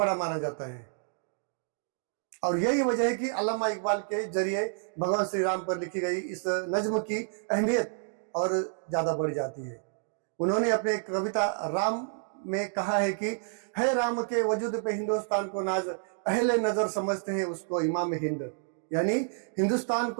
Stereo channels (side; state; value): left; silent; digital silence